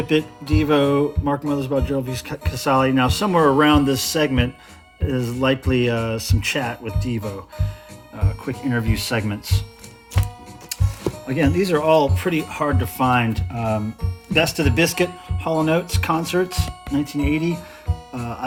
It, Devo, Mark Mothersbaugh, Gerald V. Casale. Now, somewhere around this segment is likely some chat with Devo, quick interview segments. Again, these are all pretty hard to find. Best of the Biscuit, Hall & Oates concerts, 1980. I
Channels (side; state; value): both; identical; correlation 1.00